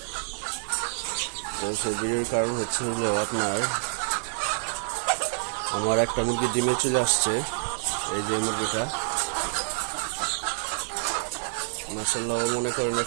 তো সেই ভিডিওর কারণ হচ্ছে আমার একটা মুরগি ডিমে চলে আসছে। এই যে মুরগিটা মাশাআল্লাহ, মনে করেন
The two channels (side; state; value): left; silent; 60 dB below the other